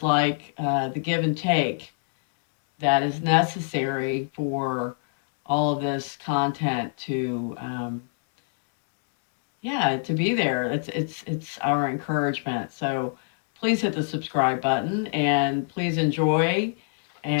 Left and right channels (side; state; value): right; silent; digital silence